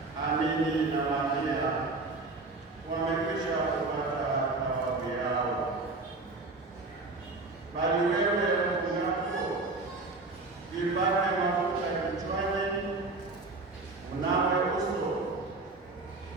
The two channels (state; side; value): quieter; left; 3.4 dB